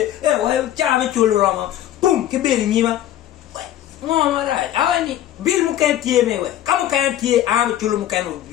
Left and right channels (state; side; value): quieter; right; 12.4 dB